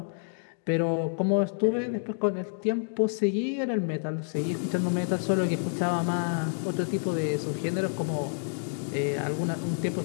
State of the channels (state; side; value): silent; right; digital silence